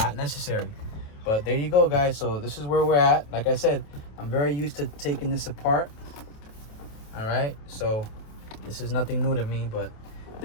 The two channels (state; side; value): late; right; 28 ms